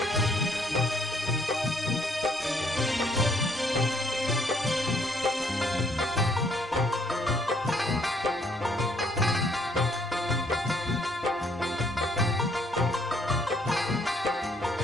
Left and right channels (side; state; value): both; normal; correlation 0.67